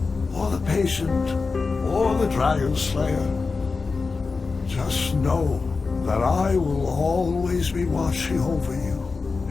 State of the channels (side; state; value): right; quieter; 4.3 dB